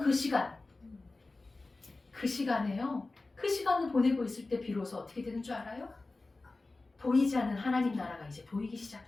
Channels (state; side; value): quieter; right; 3.3 dB